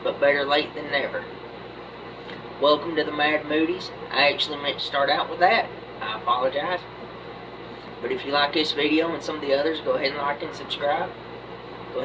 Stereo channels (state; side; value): identical; both; correlation 1.00